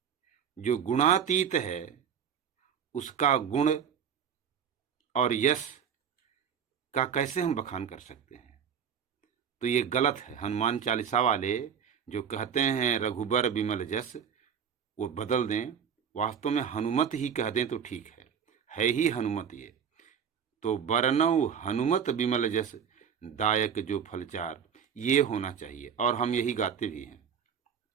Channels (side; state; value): left; quieter; 7.7 dB